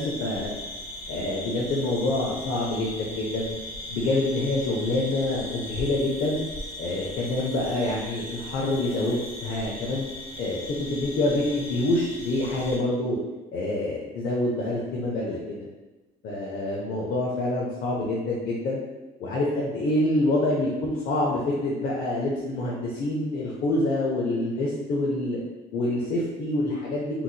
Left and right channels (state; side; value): normal; both; correlation 0.50